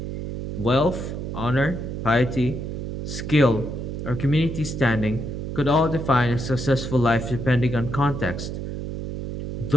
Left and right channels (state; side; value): noise; right; hum, 6 dB below the sound